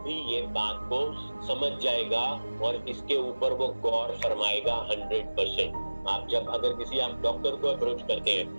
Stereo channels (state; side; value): inverted; both; correlation -1.00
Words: ये बात को समझ जाएगा और इसके ऊपर वो गौर फरमाएगा 100%। आप जब अगर किसी आप डॉक्टर को अप्रोच करते